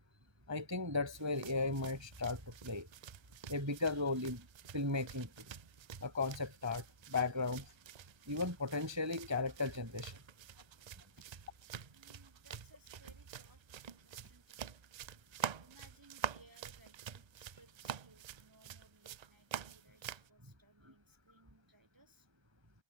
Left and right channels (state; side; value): late; left; 1.3 ms